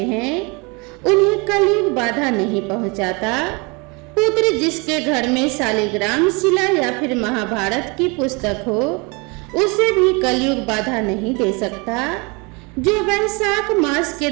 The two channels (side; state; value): left; quieter; 29.1 dB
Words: हैं, उन्हें कलयुग बाधा नहीं पहुंचाता। पुत्र जिसके घर में शालिग्राम शिला या फिर महाभारत की पुस्तक हो उसे भी कलयुग बाधा नहीं दे सकता। जो वैशाख मास के